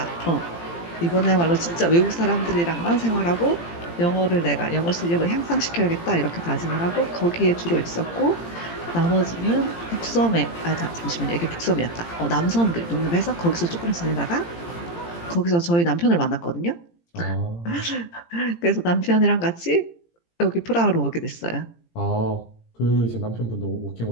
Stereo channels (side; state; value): right; late; 17 ms